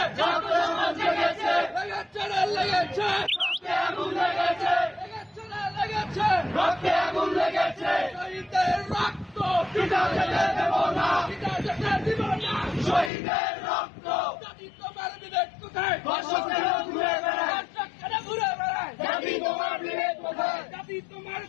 রক্তে আমার জেগেছে, লেগেছে রক্তে আগুন লেগেছে, লেগেছে রক্তে আগুন লেগেছে। শহীদের রক্ত পিতা যেতে দেব না, পিতা যেতে দিব না। শহীদের রক্ত। জাতি তোমার বিবেক কোথায়? ধর্ষকেরা ঘুরে বেড়ায়, দর্শকেরা ঘুরে বেড়ায়। জাতি তোমার বিবেক কোথায়? জাতি তোমার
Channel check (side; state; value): right; drops out; at 13.1 s